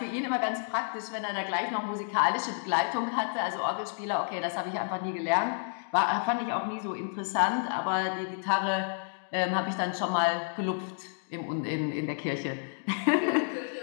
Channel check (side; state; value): right; silent; digital silence